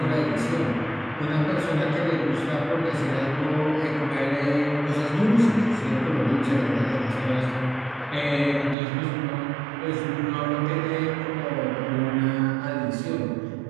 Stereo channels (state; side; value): drops out; left; at 8.8 s